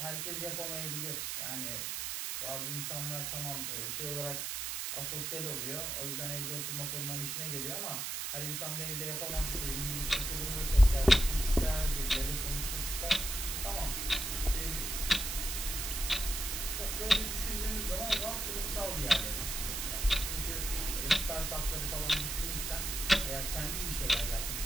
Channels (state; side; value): noise; right; hiss, 2 dB below the sound